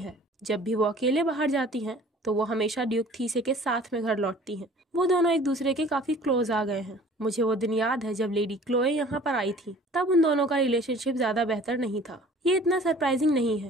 जब भी वो अकेले बाहर जाती हैं तो वो हमेशा ड्यूक थीसे के साथ में घर लौटती हैं। वो दोनों एक दूसरे के काफी क्लोज आ गए हैं। मुझे वो दिन याद है जब लेडी क्लोए यहाँ पर आई थी। तब उन दोनों का रिलेशनशिप ज्यादा बेहतर नहीं था। ये इतना सरप्राइजिंग नहीं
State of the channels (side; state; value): both; normal; correlation 0.49